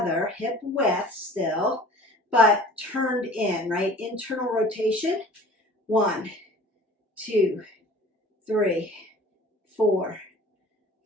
hip width still, but turned in, right? Internal rotation. 1, 2, 3, 4,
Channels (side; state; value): both; normal; correlation 0.45